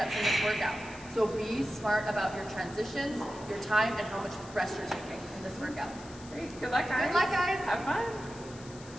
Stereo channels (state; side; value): noise; left; hiss, 19 dB below the sound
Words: in this workout. So be smart about your transitions, your time, and how much rest you're taking in this workout. Great, good luck guys. Good luck guys. Have fun.